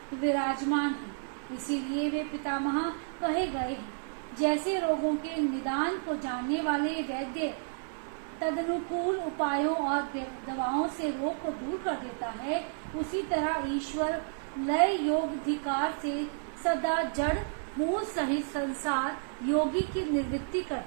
विराजमान हैं। इसीलिए वे पितामह कहे गए हैं। जैसे रोगों के निदान को जानने वाले वैद्य तदनुकूल उपायों और दवाओं से रोग को दूर कर देता है, उसी तरह ईश्वर लय योगाधिकार से सदा जड़ मूल सहित संसार योगी की निवृत्ति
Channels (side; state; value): left; silent; 57 dB below the other